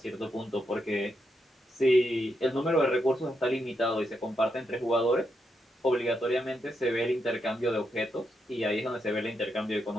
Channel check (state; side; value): normal; both; correlation 0.82